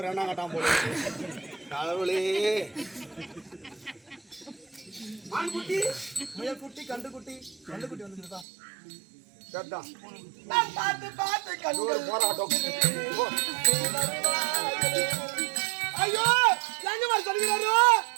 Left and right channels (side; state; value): left; drops out; at 8.5 s